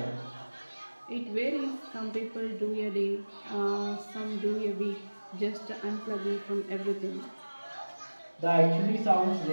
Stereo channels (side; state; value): both; inverted; correlation -1.00